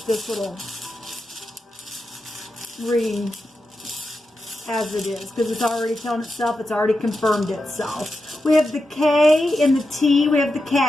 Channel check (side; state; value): both; normal; correlation 0.89